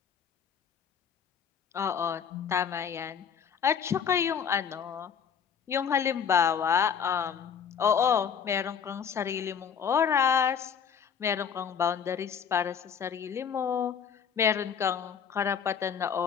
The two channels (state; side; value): quieter; right; 7.5 dB